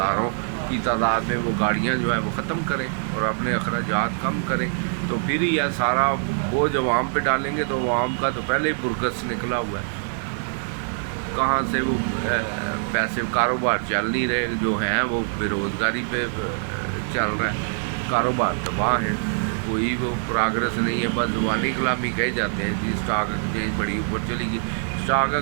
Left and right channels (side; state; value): left; silent; digital silence